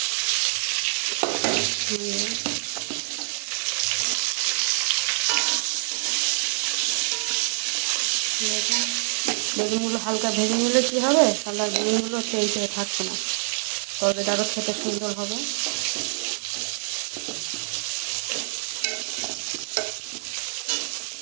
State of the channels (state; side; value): silent; left; 61 dB below the other